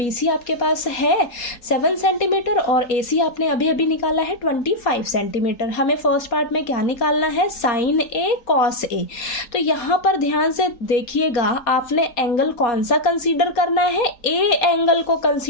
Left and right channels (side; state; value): right; late; 4.2 ms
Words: आपके पास है 7 सेंटीमीटर और AC आपने अभी अभी निकाला है 25 सेंटीमीटर। हमें फर्स्ट पार्ट में क्या निकालना है, साइन A कॉस A। तो यहाँ पर ध्यान से देखिएगा, आपने एंगल कौन सा कंसीडर करना है, A एंगल को